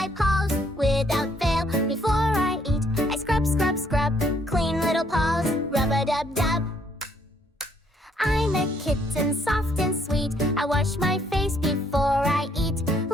paws without fail. Before I eat, I scrub, scrub, scrub. Clean little paws, rub-a-dub-dub. I'm a kitten, soft and sweet. I wash my face before I eat.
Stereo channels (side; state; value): both; normal; correlation 0.68